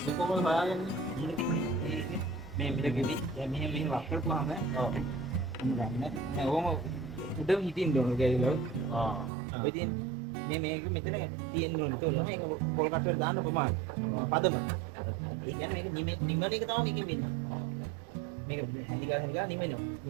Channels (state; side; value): drops out; left; at 9.3 s